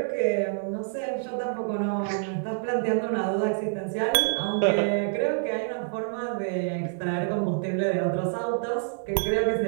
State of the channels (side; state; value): left; silent; digital silence